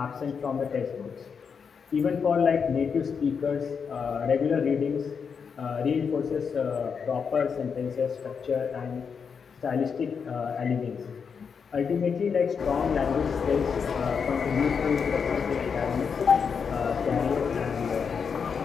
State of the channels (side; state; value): right; quieter; 6.2 dB